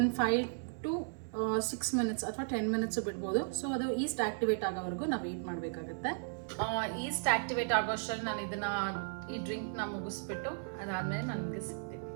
5 to 6 ಮಿನಿಟ್ಸ್ ಅಥವಾ 10 ಮಿನಿಟ್ಸು ಬಿಡ್ಬೋದು. ಸೊ ಅದು ಈಸ್ಟ್ ಆಕ್ಟಿವೇಟ್ ಆಗೋವರೆಗೂ ನಾವು ವೆಯ್ಟ್ ಮಾಡಬೇಕಾಗತ್ತೆ. ಈಸ್ಟ್ ಆಕ್ಟಿವೇಟ್ ಆಗೋಷ್ಟರಲ್ಲಿ ನಾನು ಈ ಡ್ರಿಂಕ್ನ ಮುಗಿಸ್ಬಿಟ್ಟು ಅದಾದಮೇಲೆ ನನಗೆ ಸಿಗ್ತೀನಿ.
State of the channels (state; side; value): silent; left; 54 dB below the other